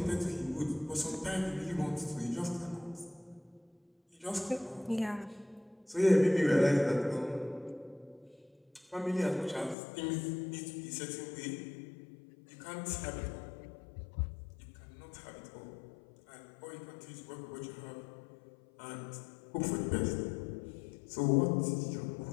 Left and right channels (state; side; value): drops out; right; at 9.8 s